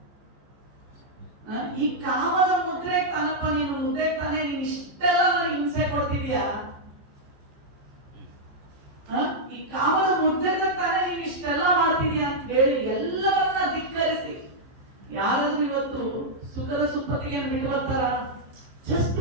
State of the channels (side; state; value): left; late; 15 ms